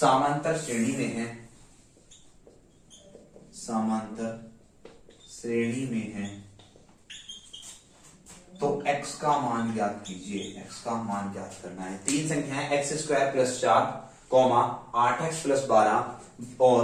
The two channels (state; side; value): identical; both; correlation 1.00